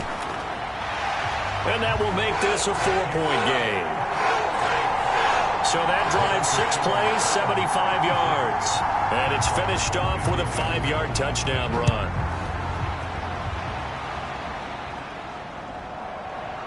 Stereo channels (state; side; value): identical; both; correlation 1.00